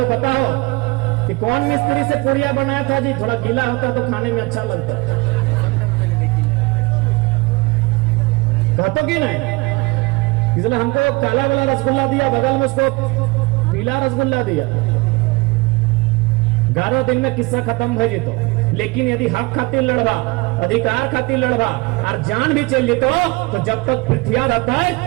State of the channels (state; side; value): quieter; left; 24.9 dB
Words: बताओ कि कौन मिस्त्री से पुड़िया बनाया था जी थोड़ा गीला होता तो खाने में अच्छा लगता कहते कि नहीं इसलिए हमको काला वाला रसगुल्ला दिया बगल में उसको पीला रसगुल्ला दिया 11 दिन में किस्सा खत्म हो जीतो लेकिन यदि हक खातिर लड़वा अधिकार खातिर लड़वा और जान भी चल जीतो तो जब तक पृथ्वी रहता है